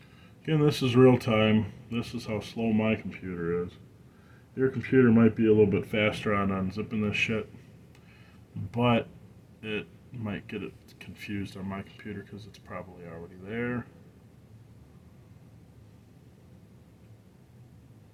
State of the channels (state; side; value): identical; both; correlation 1.00